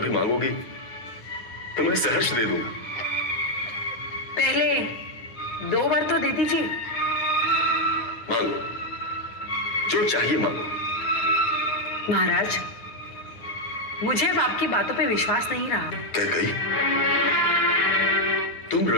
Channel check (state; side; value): late; right; 9.4 ms